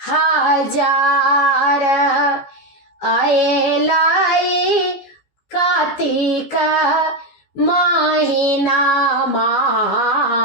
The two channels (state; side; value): late; right; 14 ms